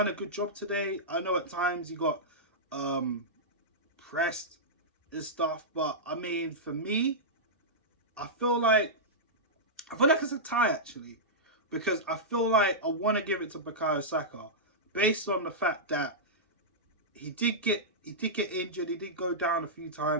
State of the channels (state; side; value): normal; both; correlation -0.12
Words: a good job today. I know at times he got pressed and stuff, but I mean, for me, I feel like it's a tie actually, because I feel like I want to give it to Bukayo Saka based on the fact that he did get injured, he did go down a few